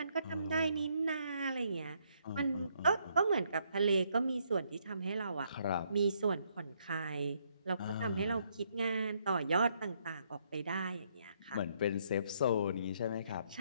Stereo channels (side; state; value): both; inverted; correlation -0.72